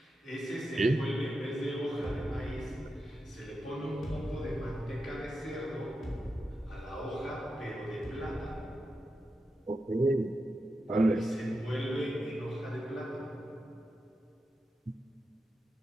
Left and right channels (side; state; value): both; normal; correlation 0.89